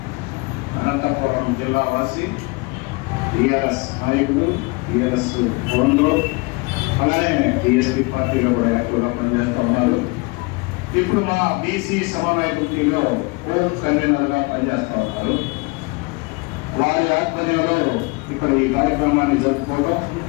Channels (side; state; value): right; quieter; 27.4 dB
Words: అనంతపురం జిల్లా వాసి టీఆర్ఎస్ నాయకులు, టీఆర్ఎస్ ఫోన్లో, అలానే టీఎస్పీ పార్టీలో కూడా యాక్టివ్గా పనిచేస్తూ ఉన్నారు. ఇప్పుడు మా బీసీ సమన్వయ కమిటీలో హోమ్ కన్వీనర్గా పనిచేస్తూ ఉన్నారు. వారి ఆధ్వర్యంలో ఇక్కడ ఈ కార్యక్రమాన్ని జరుపుకోవడం,